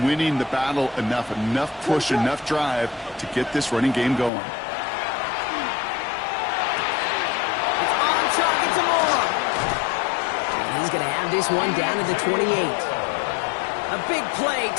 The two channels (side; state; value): right; drops out; at 4.3 s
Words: winning the battle enough push, enough drive to get this running game going. It's on target to Moore. And he's going to have this one down to the 28. A big play,